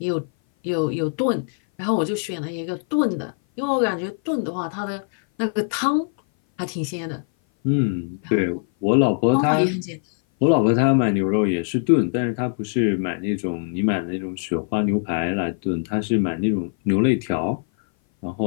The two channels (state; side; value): silent; right; 58 dB below the other